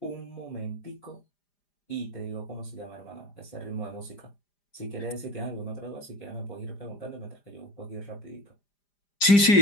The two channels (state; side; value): late; right; 5.0 ms